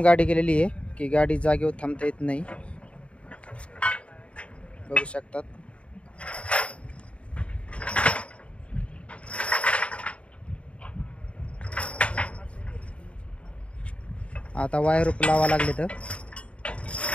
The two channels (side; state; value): right; late; 0.061 ms